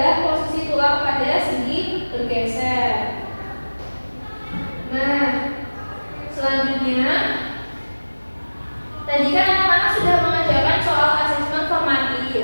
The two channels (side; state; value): both; inverted; correlation -1.00